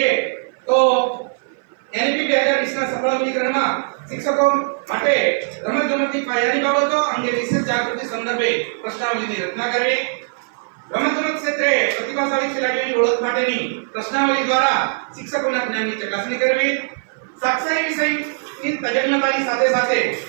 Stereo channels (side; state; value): left; silent; 57 dB below the other